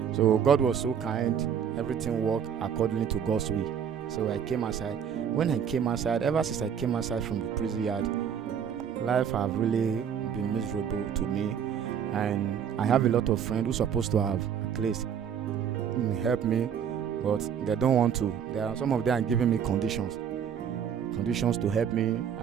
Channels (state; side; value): quieter; left; 8.1 dB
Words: So God was so kind. Everything worked according to God's will. So I came outside. When I came outside, ever since I came outside from the prison yard, life have really been miserable to me. And I have a lot of friends who are supposed to have at least help me, but they don't want to. Some of them are giving me conditions to help me.